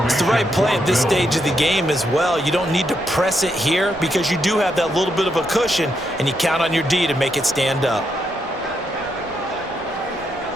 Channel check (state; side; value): normal; both; correlation 0.80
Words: It's the right play at this stage of the game as well. You don't need to press it here because you do have that little bit of a cushion, and you count on your D to make it stand up.